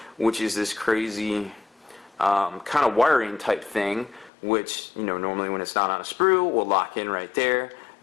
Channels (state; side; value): drops out; right; at 4.3 s